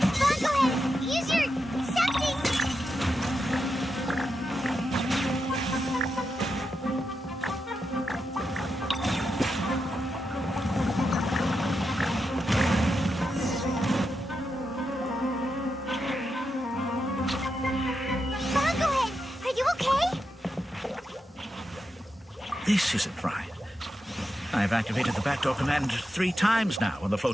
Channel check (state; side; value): normal; both; correlation 0.87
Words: Go ahead, use your something. This isn't right. I've activated the backdoor command 3 times now on the